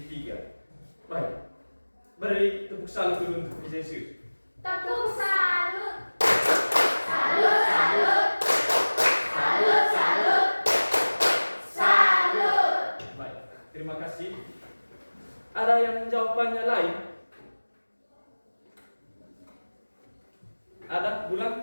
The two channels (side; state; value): both; inverted; correlation -1.00